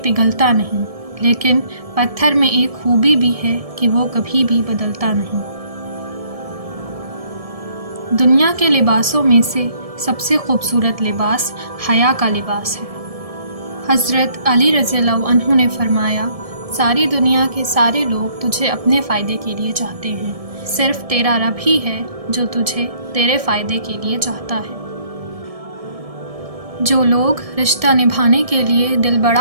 نہیں، لیکن پتھر میں ایک خوبی بھی ہے کہ وہ کبھی بھی بدلتا نہیں۔ دنیا کے لباسوں میں سے سب سے خوبصورت لباس حیا کا لباس ہے۔ حضرت علی رضی اللہ عنہ نے فرمایا، ساری دنیا کے سارے لوگ تجھے اپنے فائدے کے لیے چاہتے ہیں، صرف تیرا رب ہی ہے جو تجھے تیرے فائدے کے لیے چاہتا ہے۔ جو لوگ رشتہ نبھانے کے لیے دل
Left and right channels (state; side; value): late; left; 1.7 ms